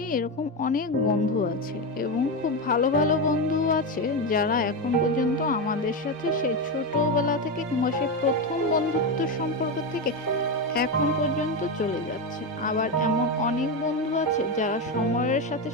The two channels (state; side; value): normal; both; correlation 0.13